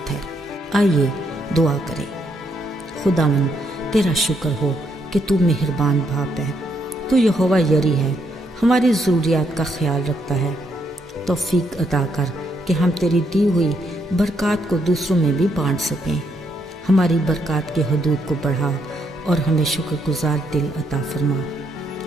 ہے۔ آئیے دعا کریں۔ خداوند، تیرا شکر ہو کہ تو مہربان باپ ہے، تو یہوہ یری ہے، ہماری ضروریات کا خیال رکھتا ہے۔ توفیق عطا کر کہ ہم تیری دی ہوئی برکات کو دوسروں میں بھی بانٹ سکیں۔ ہماری برکات کے حدود کو بڑھا اور ہمیں شکر گزار دل عطا فرما۔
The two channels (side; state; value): both; normal; correlation 0.75